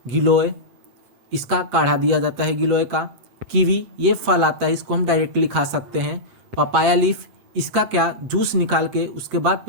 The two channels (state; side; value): late; left; 7.7 ms